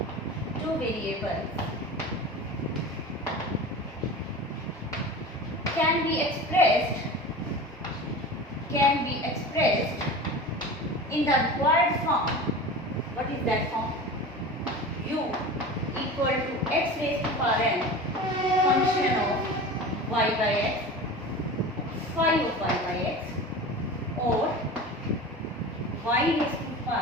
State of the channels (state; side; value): normal; both; correlation 0.33